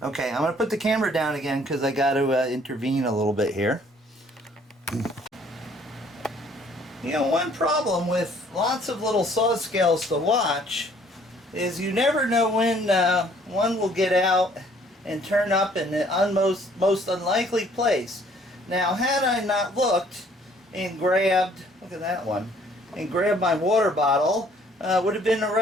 Okay, I'm going to put the camera down again because I got to intervene a little bit here. You know, one problem with lots of little saw scales to watch is you never know when one will get out and turn up in the most unlikely place. Now, had I not looked and grabbed, look at that one, and grabbed my water bottle, would have been a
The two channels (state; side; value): normal; both; correlation 0.60